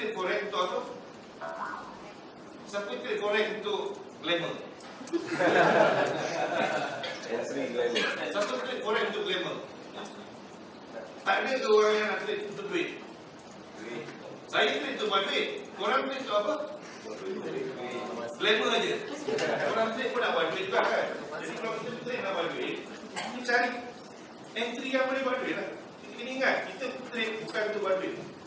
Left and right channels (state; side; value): identical; both; correlation 1.00